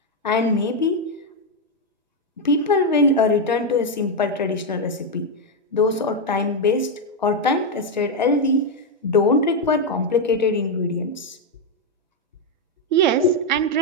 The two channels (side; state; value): both; normal; correlation 0.03